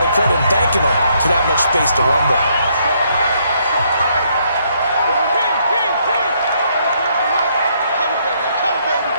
of credit and thanking them for that much space to rumble.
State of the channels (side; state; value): both; inverted; correlation -0.71